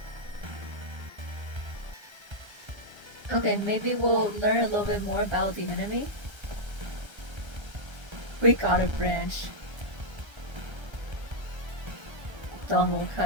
okay, maybe we'll learn a little bit more about the enemy. We got a branch. Dawn will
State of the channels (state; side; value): late; left; 1.3 ms